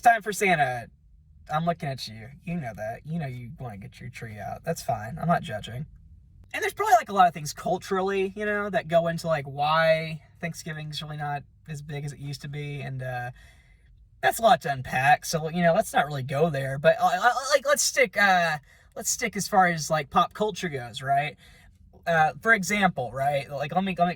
for Santa. I'm looking at you. You know that. You want to get your tree out. That's fine. I'm not judging. And there's probably a lot of things culturally, that go into why Thanksgiving's really not as big as it used to be. And that's a lot to unpack. So, let's not really go there. But let's stick as far as pop culture goes, right? For example, right? Let me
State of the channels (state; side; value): identical; both; correlation 1.00